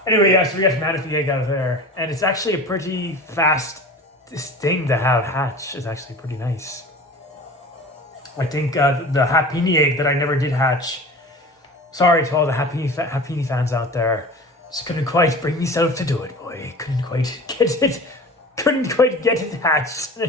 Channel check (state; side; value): normal; both; correlation 0.36